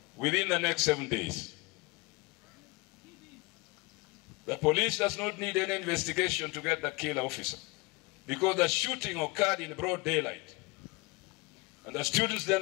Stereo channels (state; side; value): quieter; right; 25.2 dB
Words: within the next 7 days. The police does not need any investigation to get the killer officer, because the shooting occurred in broad daylight. And the students